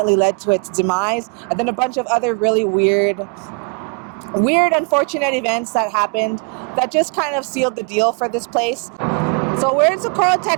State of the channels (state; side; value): quieter; left; 35.5 dB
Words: led to its demise, and then a bunch of other really weird unfortunate events that happened that just kind of sealed the deal for this place. So we're in Socorro,